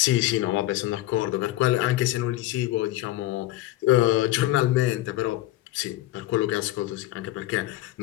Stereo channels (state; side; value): quieter; right; 16.1 dB